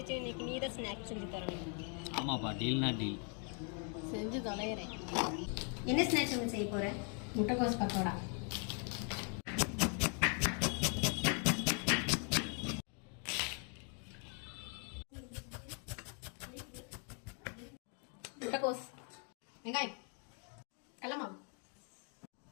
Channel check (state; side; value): quieter; right; 40.0 dB